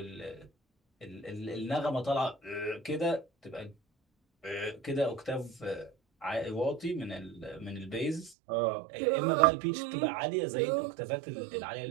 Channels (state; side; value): drops out; left; at 8.3 s